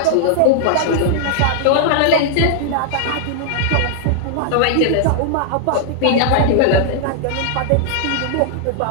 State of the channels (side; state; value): both; different; correlation -0.01